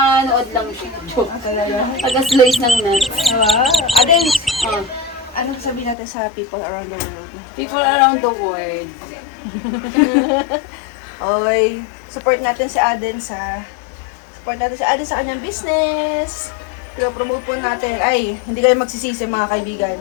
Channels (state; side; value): drops out; right; at 6.0 s